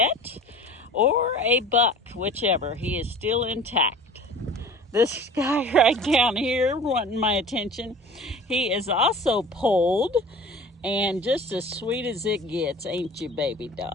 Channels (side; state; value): both; normal; correlation 0.42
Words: or a buck, whichever. He is still intact. This guy right down here wanting my attention, he is also polled and just as sweet as it gets, ain't you, baby